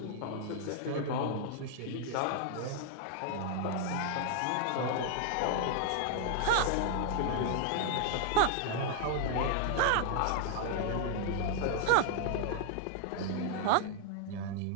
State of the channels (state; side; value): different; both; correlation 0.00